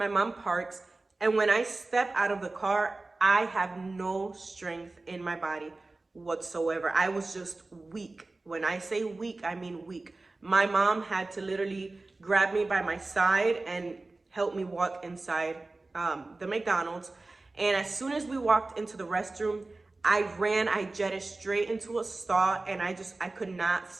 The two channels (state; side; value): quieter; left; 3.2 dB